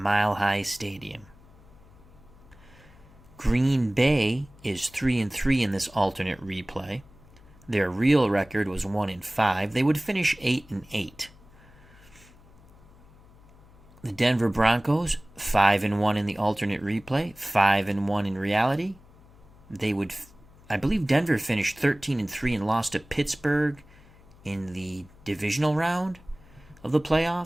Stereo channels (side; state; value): left; noise; hum, 25 dB below the sound